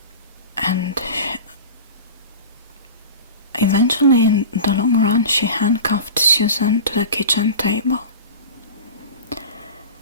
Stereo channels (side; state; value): both; inverted; correlation -0.33